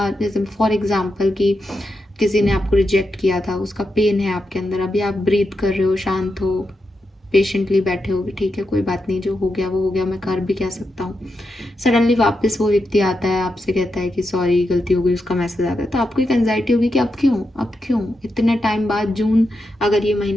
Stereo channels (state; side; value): normal; both; correlation 0.87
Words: जैसे फॉर एग्जाम्पल कि किसी ने आपको रिजेक्ट किया था, उसका पेन है आपके अंदर, अभी आप ब्रीथ कर रहे हो, शांत हो, पेशेंटली बैठे हो, ठीक है कोई बात नहीं, जो हो गया वो हो गया, मैं कर भी क्या सकता हूँ। सडनली वापस वो व्यक्ति आता है, आपसे कहता है कि सॉरी गलती हो गई, उसका मैसेज आता है, तो आपको एक एंजाइटी होगी कि अब क्यों इतने टाइम बाद, जून अगर ये